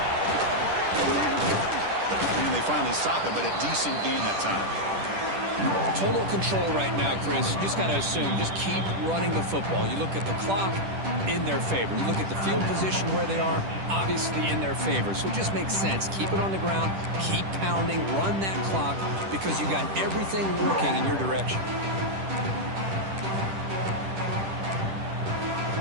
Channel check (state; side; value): late; left; 10 ms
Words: And they finally stop it, but a decent gain that time. Total control right now, Chris. You just got to assume, just keep running the football. You look at the clock, in their favor. You look at the field position where they are, obviously in their favor. So it just makes sense. Keep it on the ground, keep pounding, run that clock, because you got everything working in your direction.